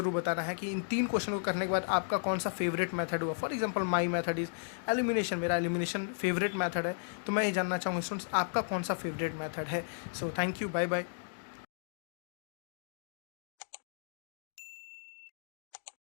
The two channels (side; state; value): right; silent; digital silence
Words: बताना है कि इन 3 क्वेश्चन को करने के बाद आपका कौन सा फेवरेट मेथड हुआ। For example my method is elimination, मेरा एलिमिनेशन फेवरेट मेथड है, तो मैं ये जानना चाहूँगा स्टूडेंट्स आपका कौन सा फेवरेट मेथड है। So thank you, bye bye.